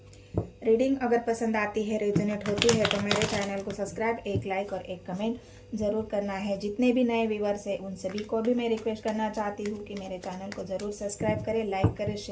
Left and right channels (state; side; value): identical; both; correlation 1.00